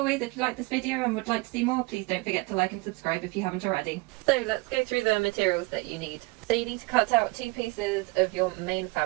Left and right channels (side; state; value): left; quieter; 25.8 dB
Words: if you like this video and would like to see more, please don't forget to like and subscribe if you haven't already. So let's go through the materials that you need. So you need to cut out 2 pieces of your main